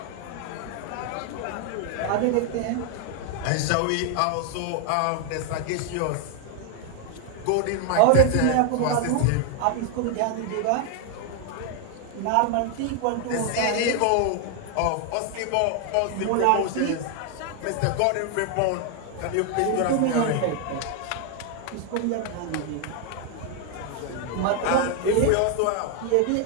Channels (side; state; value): both; different; correlation 0.00